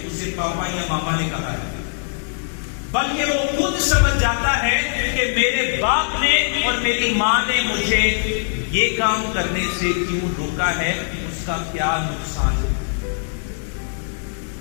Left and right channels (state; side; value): silent; right; digital silence